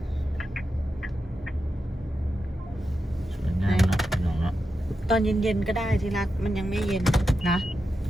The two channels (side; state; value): both; normal; correlation 0.89